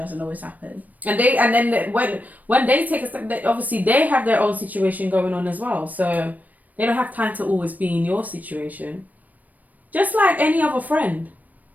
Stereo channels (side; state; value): left; late; 0.079 ms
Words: always happen. And when they take a step, obviously they have their own situation going on as well, so they don't have time to always be in your situation. Just like any other friend.